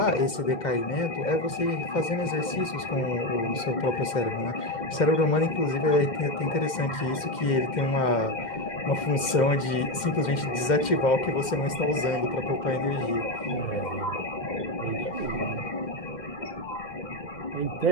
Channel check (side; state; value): right; late; 2.1 ms